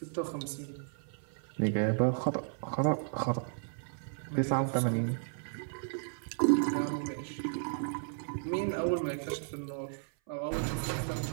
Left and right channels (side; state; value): left; silent; 55 dB below the other